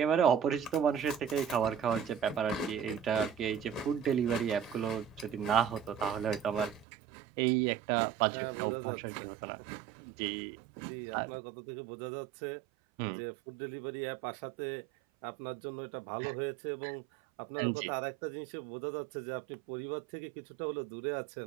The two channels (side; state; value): left; drops out; at 6.9 s